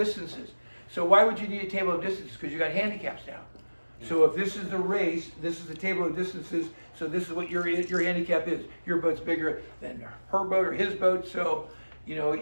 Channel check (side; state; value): both; inverted; correlation -1.00